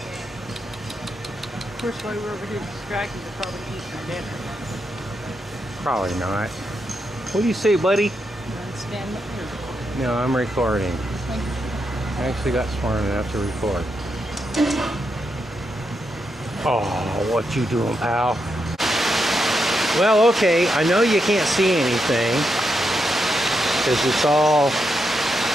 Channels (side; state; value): both; normal; correlation 0.83